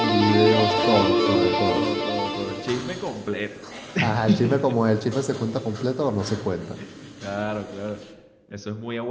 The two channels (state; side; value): identical; both; correlation 1.00